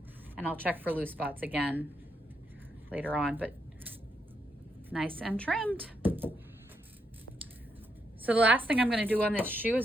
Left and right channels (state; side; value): normal; both; correlation 0.79